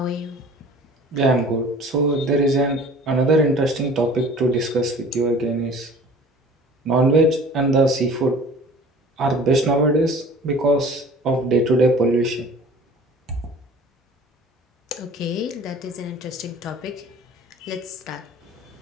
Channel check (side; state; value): both; normal; correlation 0.46